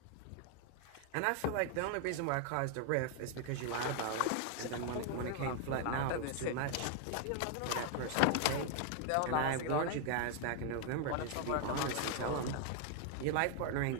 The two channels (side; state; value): both; different; correlation 0.00